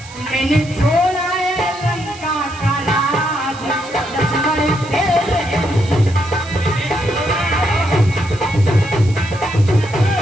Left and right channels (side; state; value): right; noise; hiss, 19 dB below the sound